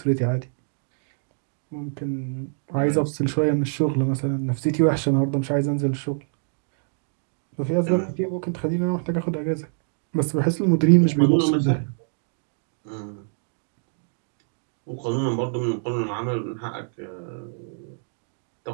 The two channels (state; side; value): silent; left; 61 dB below the other